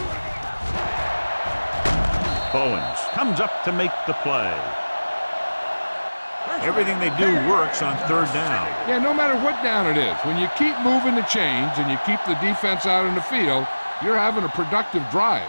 Bowens comes up to make the play. Everything they do works on third down. Yeah, no matter what down it is, when you keep moving the chains and you keep the defense out in the field, you're having a productive drive.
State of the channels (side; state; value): both; inverted; correlation -1.00